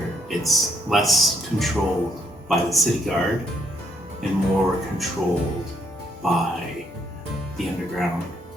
it's less controlled by the city guard and more controlled by the underground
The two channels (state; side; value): normal; both; correlation 0.71